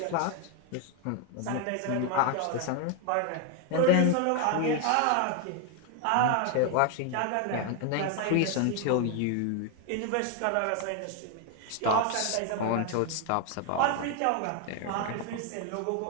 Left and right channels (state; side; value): different; both; correlation 0.01